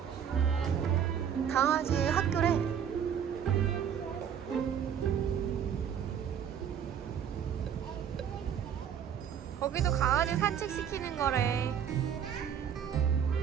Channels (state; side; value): quieter; left; 8.4 dB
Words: 강아지 학교래. 거기도 강아지 산책시키는 거래.